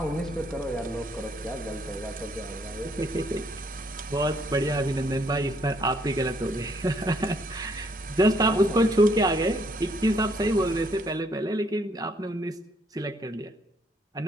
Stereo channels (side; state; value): both; normal; correlation 0.68